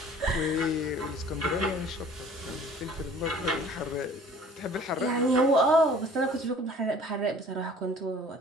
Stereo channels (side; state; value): both; normal; correlation 0.50